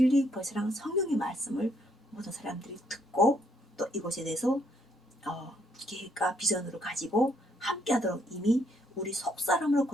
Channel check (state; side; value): normal; both; correlation 0.71